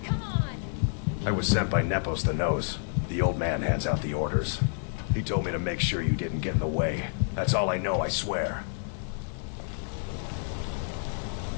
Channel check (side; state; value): right; silent; 59 dB below the other